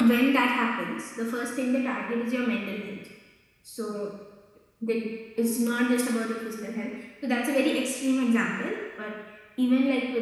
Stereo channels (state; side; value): identical; both; correlation 1.00